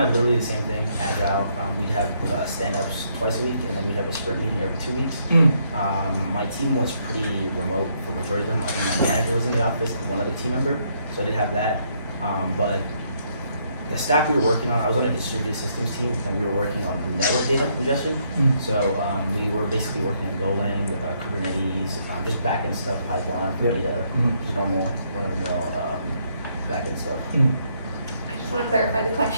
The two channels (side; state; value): both; inverted; correlation -0.72